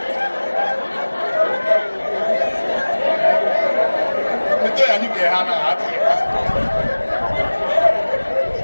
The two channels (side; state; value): both; inverted; correlation -1.00